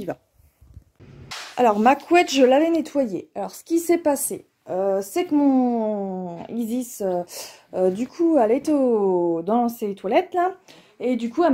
va. Alors, ma couette, je l'avais nettoyée. Alors, ce qui s'est passé, c'est que mon Isis, du coup, elle était dans ses toilettes, là. Et du coup, elle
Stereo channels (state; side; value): identical; both; correlation 1.00